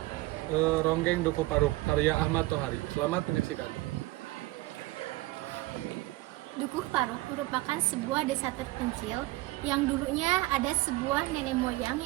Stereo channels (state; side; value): quieter; left; 19.3 dB